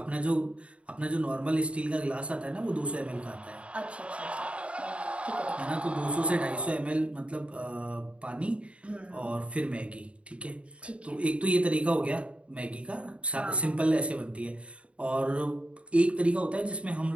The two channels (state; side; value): late; left; 0.061 ms